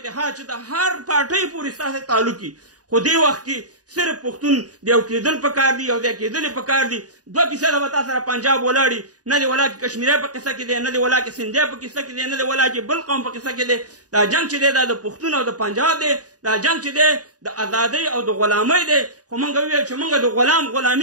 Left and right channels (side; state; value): left; late; 0.68 ms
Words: چې د هر پارټۍ پورې ستاسې تعلق وي. خو دې وخت کې صرف پښتون د یو کېدل پکار دي، یو ځای کېدل پکار دي. 2% به تا سره پنجاب ولاړي، نه دی ولا کې کشمیری په قصه کې دی، نه دی ولا کې سندھی په قصه کې دی، نه دی ولا کې بل قوم په قصه کې دی. دا جنګ چې دی دا د پښتون او د پنجاب دی. دا جنګ چې دی د ازادۍ او د غلامۍ دی. خو موږ وویل چې موږ د